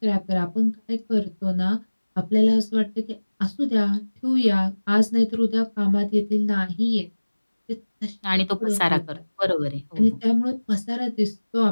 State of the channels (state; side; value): inverted; both; correlation -1.00